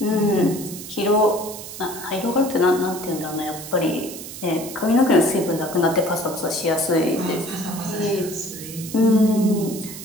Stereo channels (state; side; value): noise; right; hiss, 11 dB below the sound